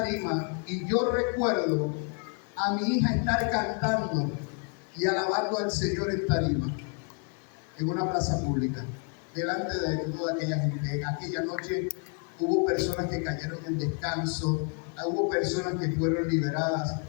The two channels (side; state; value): right; quieter; 38.6 dB